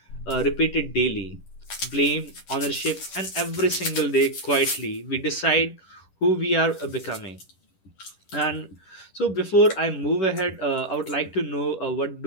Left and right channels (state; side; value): late; right; 11 ms